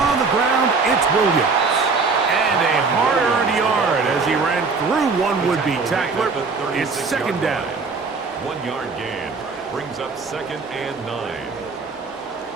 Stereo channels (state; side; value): quieter; left; 4.5 dB